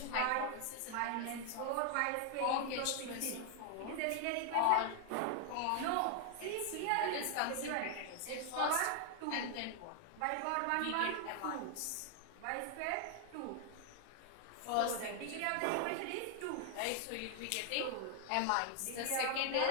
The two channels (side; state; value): both; different; correlation 0.00